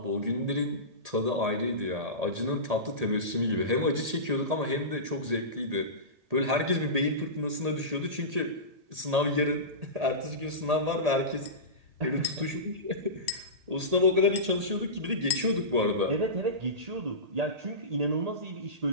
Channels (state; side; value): late; left; 1.8 ms